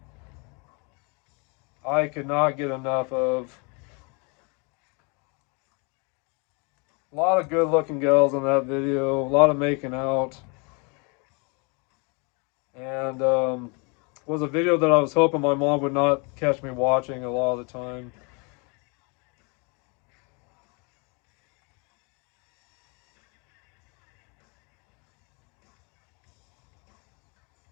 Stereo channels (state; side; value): quieter; right; 32.4 dB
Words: I could not get enough of. A lot of good looking girls in that video. A lot of making out. And was a video that I was hoping my mom would not catch me watching a lot of the time.